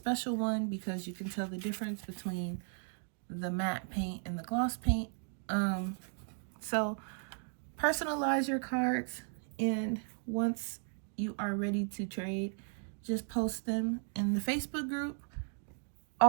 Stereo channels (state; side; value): silent; left; 54 dB below the other